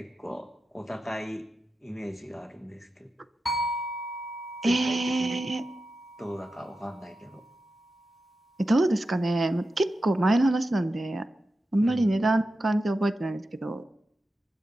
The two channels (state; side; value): normal; both; correlation 0.91